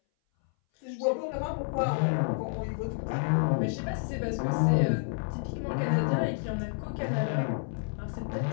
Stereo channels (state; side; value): silent; right; 58 dB below the other